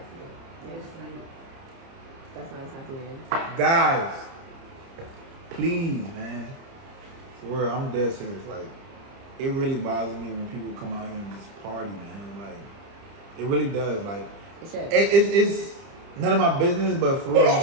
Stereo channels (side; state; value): left; late; 30 ms